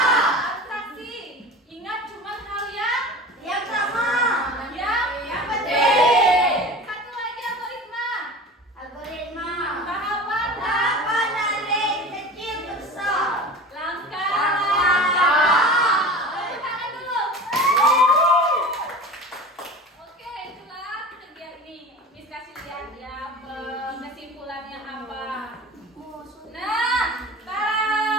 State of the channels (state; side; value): normal; both; correlation 0.35